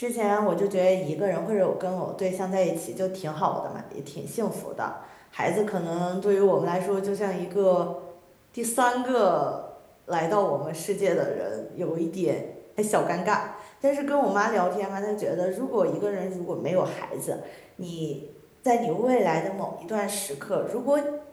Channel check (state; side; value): identical; both; correlation 1.00